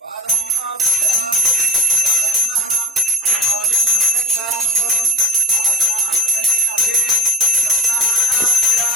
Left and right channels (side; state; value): both; normal; correlation 0.39